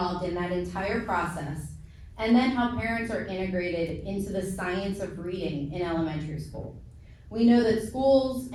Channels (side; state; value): both; identical; correlation 1.00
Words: in that entire process, and then how parents are integrated into the science of reading in elementary school. We know that schools